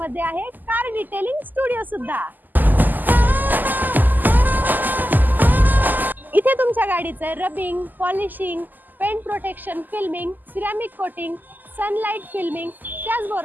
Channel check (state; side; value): late; left; 0.086 ms